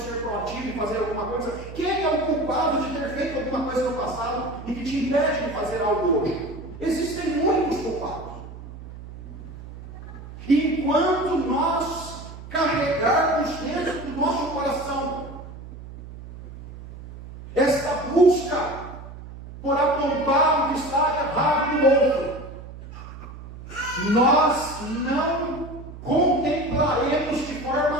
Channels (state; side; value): noise; right; hum, 14 dB below the sound